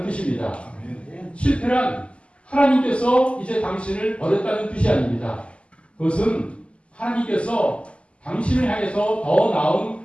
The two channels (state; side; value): late; right; 0.057 ms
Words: 뜻입니다. 실패란 하나님께서 이제 당신을 버렸다는 뜻이 아닙니다. 그것은 하나님께서 당신을 향해서 더 나은